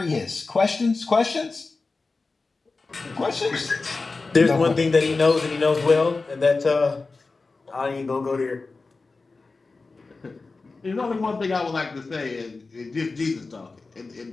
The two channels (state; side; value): quieter; right; 3.8 dB